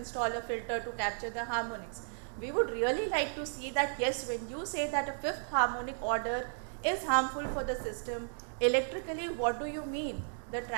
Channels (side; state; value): left; silent; digital silence